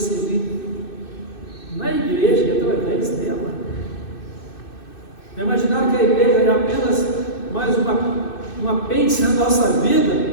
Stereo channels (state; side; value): late; right; 2.6 ms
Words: na igreja e através dela. Imaginaram que a igreja é apenas mais um apêndice na nossa vida,